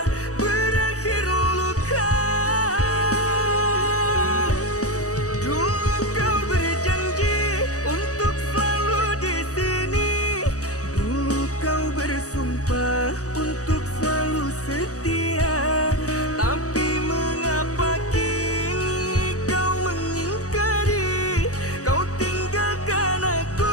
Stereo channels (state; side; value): late; right; 0.66 ms